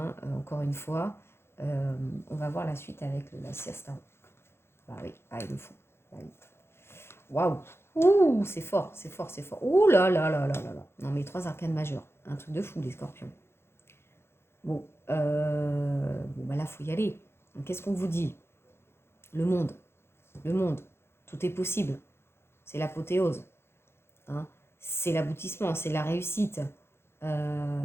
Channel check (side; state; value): right; late; 0.12 ms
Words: encore une fois, on va voir la suite avec la siesta. Bah oui, ah, il le faut. Bah oui. Waouh! Ouh, c'est fort, c'est fort, c'est fort. Ouh là là là là là là. Non, mais 3 arcanes majeurs. Un truc de fou, les scorpions. Bon, bah là, il faut y aller. Donc, qu'est-ce qu'on vous dit? Le monde. Le monde. Tout est possible. C'est l'apothéose. Hein. C'est l'aboutissement, c'est la réussite.